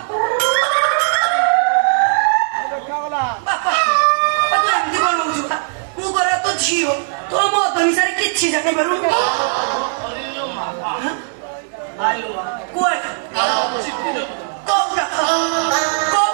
ବାପା ତୁ ଏମିତି କଣ ହଉଛୁ ମୁଁ କରେ ତ ଝିଅ ତୋର ମଦ ନିଶାରେ କିଛି ଜାଣିପାରୁନୁ କୁଆଡେ କୋଉଟା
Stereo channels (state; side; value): silent; left; digital silence